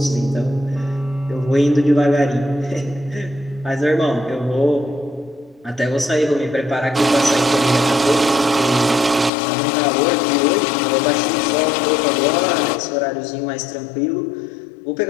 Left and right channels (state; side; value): drops out; right; at 9.3 s